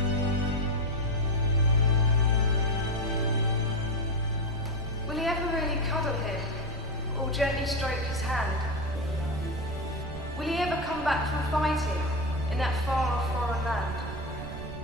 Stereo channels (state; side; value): noise; right; rumble, 11 dB below the sound